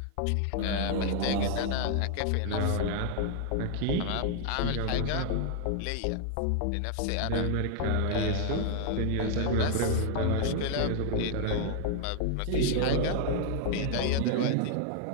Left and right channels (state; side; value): different; both; correlation 0.00